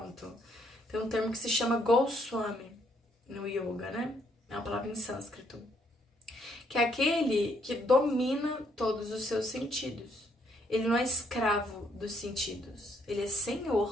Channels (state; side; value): normal; both; correlation 0.70